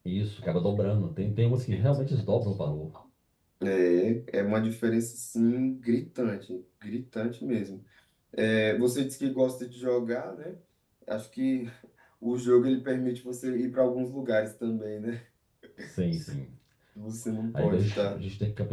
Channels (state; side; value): identical; both; correlation 1.00